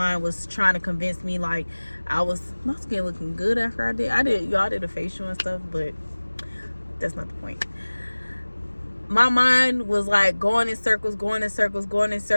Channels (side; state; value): both; inverted; correlation -1.00